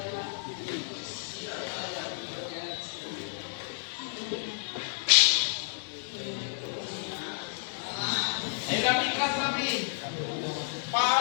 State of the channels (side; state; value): right; silent; digital silence